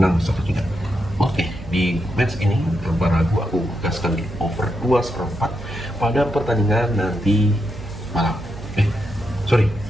1-3. Oke, di match ini tanpa ragu aku gaskan di over 2/4 pada pertandingan nanti malam.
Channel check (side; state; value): right; noise; hum, 14 dB below the sound